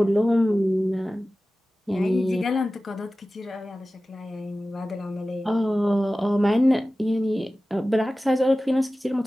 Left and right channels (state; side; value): normal; both; correlation 0.96